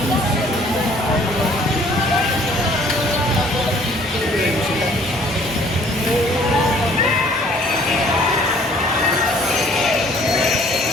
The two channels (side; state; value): both; normal; correlation 0.57